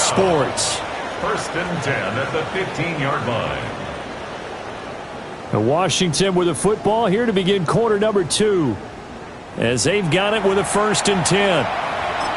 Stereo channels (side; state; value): both; identical; correlation 1.00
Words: First and 10 at the 15-yard line. And Washington with the football here to begin quarter number 2. As they've got it with a 1st and 10.